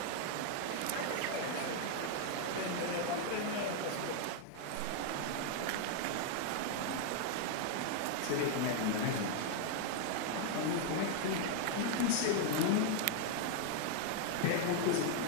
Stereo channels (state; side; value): different; both; correlation 0.00